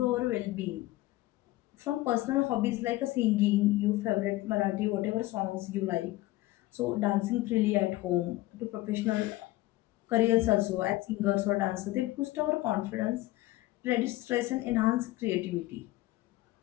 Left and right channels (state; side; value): quieter; right; 17.9 dB